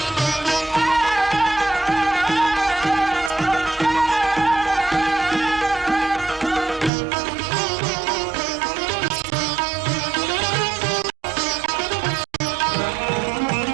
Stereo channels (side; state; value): left; drops out; at 6.9 s